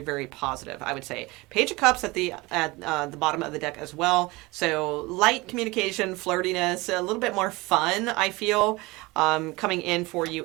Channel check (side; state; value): left; quieter; 22.8 dB